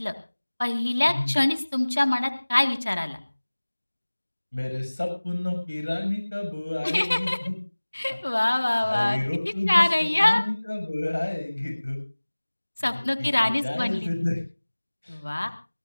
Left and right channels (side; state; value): both; inverted; correlation -1.00